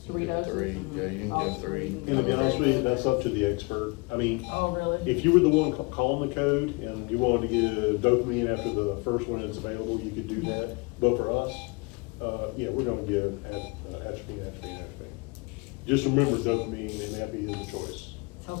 3 doses? Three, yeah, you can Oh, give 3. Gonna be honest with you, that's up to the expert. I mean, Oh, really? if you were the one calling the code and you wanted to get a dopamine after the first one that's available, you could do that. But for us, yeah, we're gonna give atropine. Just remember dopamine and epi is a choice.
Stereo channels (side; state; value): right; quieter; 28.7 dB